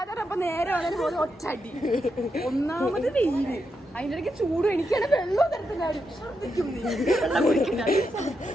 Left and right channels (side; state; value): both; normal; correlation 0.84